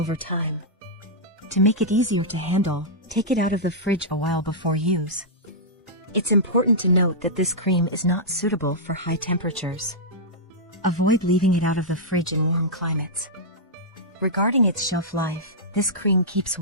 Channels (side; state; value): both; normal; correlation -0.10